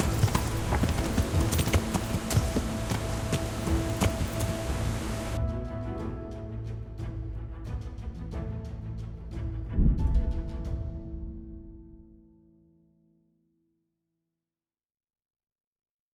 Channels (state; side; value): identical; both; correlation 1.00